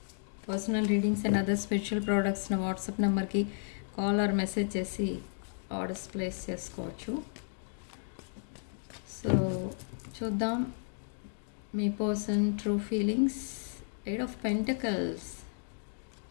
personal readings and other spiritual products నా వాట్సాప్ నెంబర్కి కాల్ ఆర్ మెసేజ్ చేసి ఆర్డర్స్ ప్లేస్ చేసుకోవచ్చు. సో చూద్దాం మీ person true feelings. 8 of Pentacles,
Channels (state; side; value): silent; right; digital silence